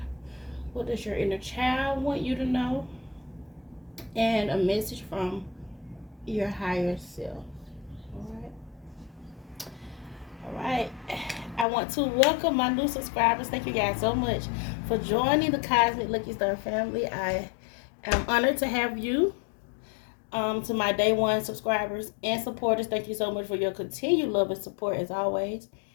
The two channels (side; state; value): right; drops out; at 11.7 s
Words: What does your inner child want you to know? And a message from your higher self. Alright. I want to welcome my new subscribers. Thank you guys so much for joining the Cosmic Lucky Star family. I am honored to have you. To my day one subscribers and supporters, thank you so much for your continued love and support as always.